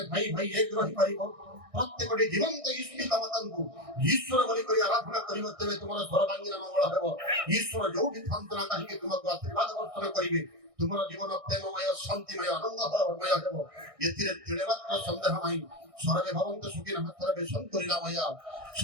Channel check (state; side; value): late; left; 1.6 ms